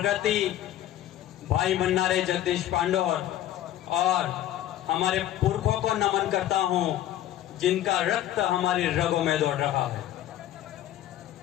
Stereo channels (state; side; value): quieter; right; 12.7 dB